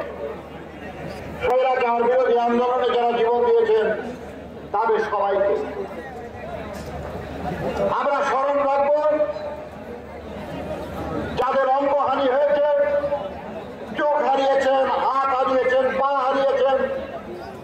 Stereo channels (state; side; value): identical; both; correlation 1.00